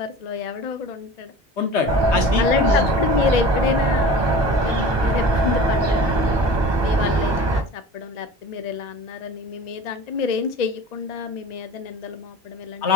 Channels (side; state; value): both; normal; correlation 0.39